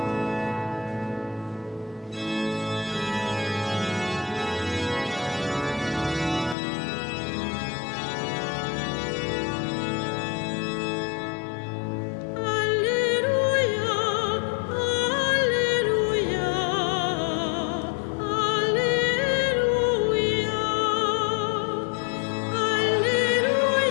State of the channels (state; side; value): drops out; right; at 6.6 s